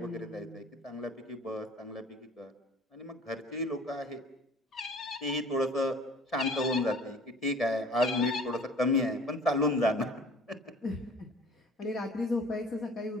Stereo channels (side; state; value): both; normal; correlation 0.47